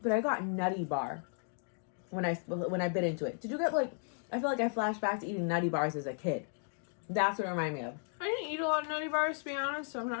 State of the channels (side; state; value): right; silent; 55 dB below the other